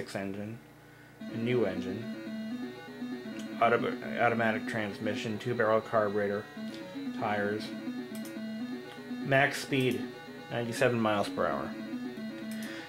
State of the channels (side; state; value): both; identical; correlation 1.00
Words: engine, a new engine, automatic transmission, 2-barrel carburetor, tires, max speed 97 miles per hour.